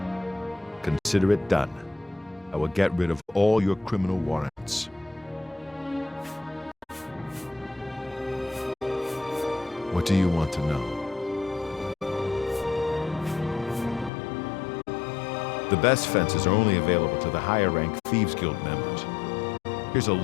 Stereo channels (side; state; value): right; drops out; at 14.1 s